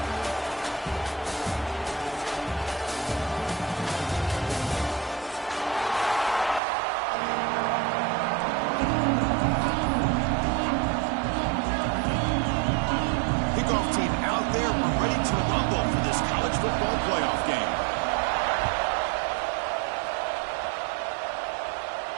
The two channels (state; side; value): drops out; left; at 6.6 s